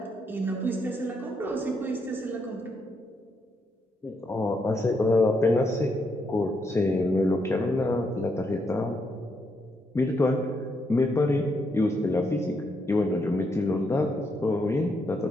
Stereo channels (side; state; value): both; normal; correlation 0.78